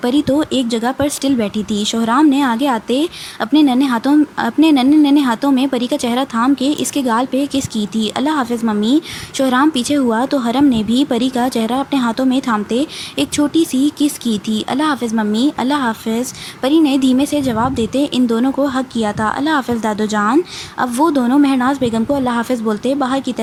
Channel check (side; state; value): both; identical; correlation 1.00